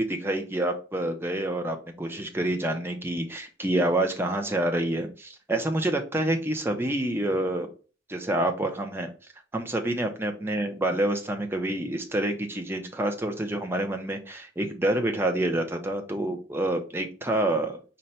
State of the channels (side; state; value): both; normal; correlation 0.62